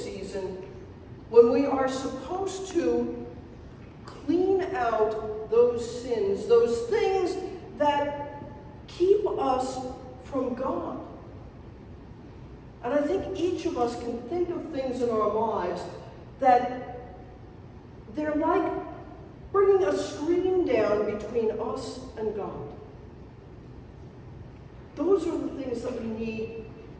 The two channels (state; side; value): identical; both; correlation 1.00